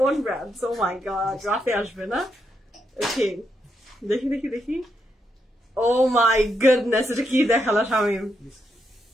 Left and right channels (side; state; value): both; normal; correlation 0.81